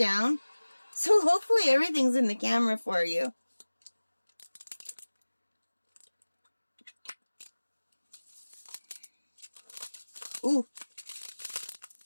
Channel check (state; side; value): inverted; both; correlation -1.00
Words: So hopefully everything's in the camera for you. Ooh,